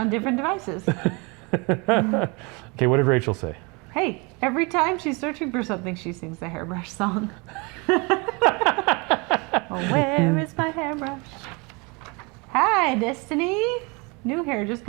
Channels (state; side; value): quieter; left; 29.1 dB